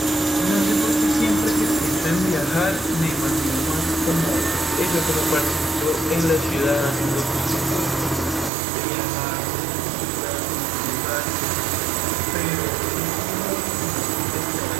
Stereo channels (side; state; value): left; drops out; at 8.5 s